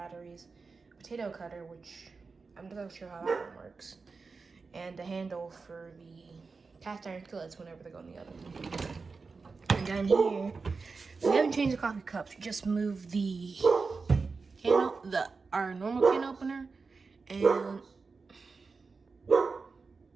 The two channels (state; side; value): quieter; left; 4.5 dB